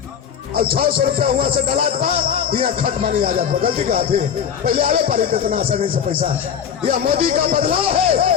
और 600 रुपया हुआ से डलात बा, यहाँ खट मानी आ जाता। गलती का थी, पहले आवे पारी इतना आसानी से पैसा। यह मोदी का बदलाव है,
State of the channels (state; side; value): quieter; right; 8.0 dB